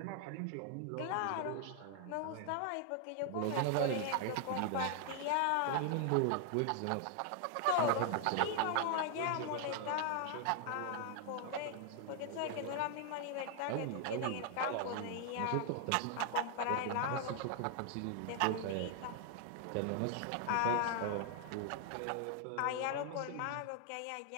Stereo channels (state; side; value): different; both; correlation 0.00